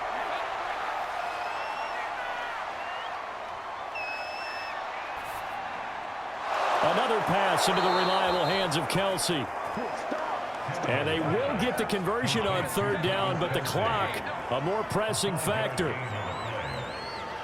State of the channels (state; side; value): identical; both; correlation 1.00